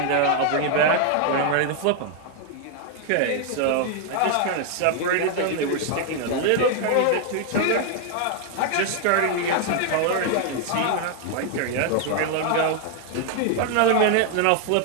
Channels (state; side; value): different; both; correlation 0.00